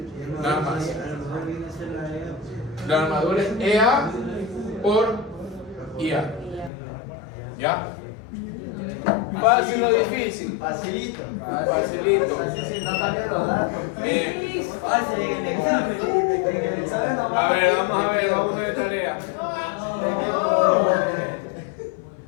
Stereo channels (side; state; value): right; drops out; at 6.7 s